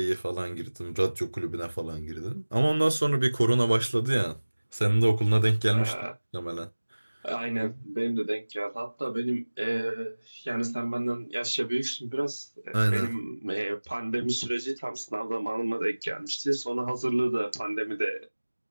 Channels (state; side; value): inverted; both; correlation -1.00